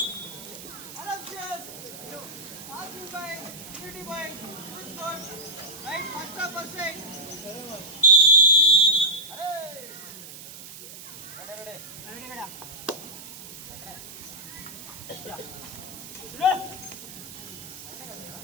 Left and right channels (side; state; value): right; noise; hiss, 14 dB below the sound